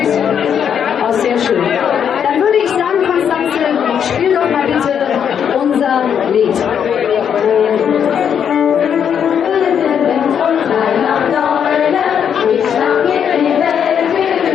Oh, sehr schön. Dann würde ich sagen, Konstanze, spiel doch mal bitte unser Lied.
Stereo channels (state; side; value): quieter; right; 8.1 dB